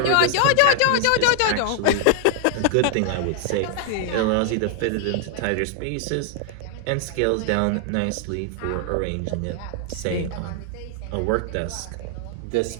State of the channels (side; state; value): both; different; correlation 0.00